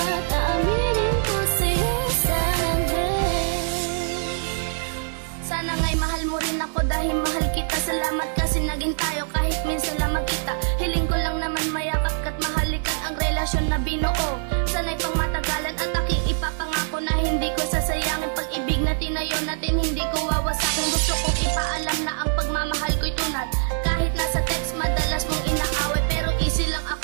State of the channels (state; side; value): silent; left; digital silence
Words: tawilin ko sa'yo sa akin. Sana nga'y mahal mo rin ako dahil mahal kita. Salamat kasi naging tayo kahit minsan lang magkita. Hiling ko lang naman mayakap ka't mahalikan ang relasyon na binuo. Sana'y pang matagalan at aking ipapangako na hindi ko sasayangin pag-ibig na tinayo natin, hindi ko wawasakin. Gusto kong ipaalam na ang pagmamahal ko'y tunad. Kahit nasa text madalas mong inaaway, pero easy lang